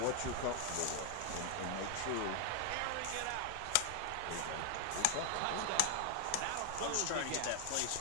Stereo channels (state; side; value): different; both; correlation 0.00